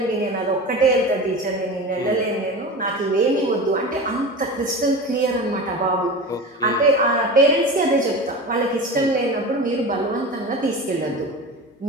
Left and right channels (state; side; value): normal; both; correlation 0.30